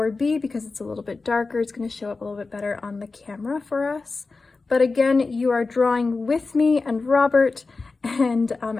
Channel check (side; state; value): right; quieter; 3.9 dB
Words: because it's a little bit darker. It's going to show up a little bit better on the camera for us. But again, you are drawing with me and Robert, and